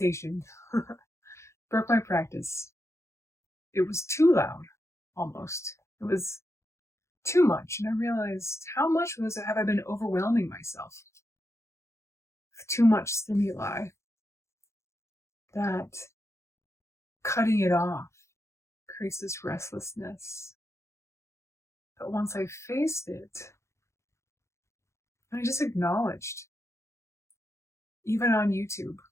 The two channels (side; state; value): right; late; 0.14 ms